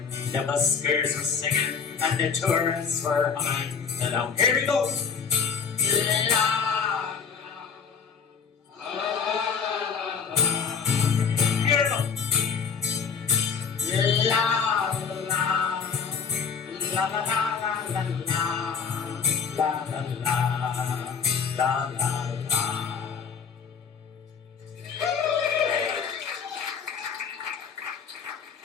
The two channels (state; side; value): quieter; right; 6.3 dB